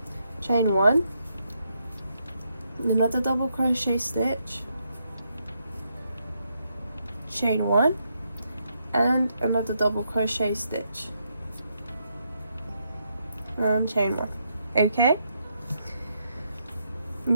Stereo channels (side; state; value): both; inverted; correlation -0.78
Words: chain 1, another double crochet stitch, chain 1, and another double crochet stitch and chain 1. Okay,